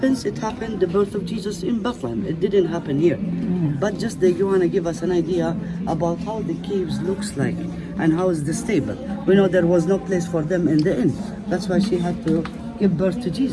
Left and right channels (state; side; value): identical; both; correlation 1.00